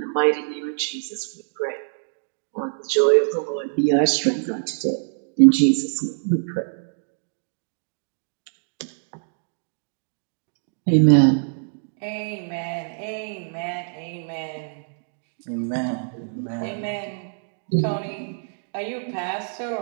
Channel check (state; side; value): silent; left; digital silence